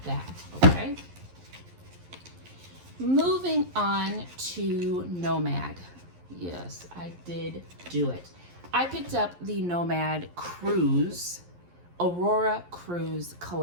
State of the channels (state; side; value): late; left; 11 ms